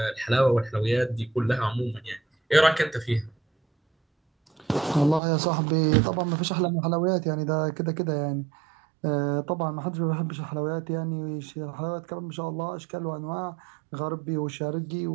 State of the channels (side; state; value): left; drops out; at 5.2 s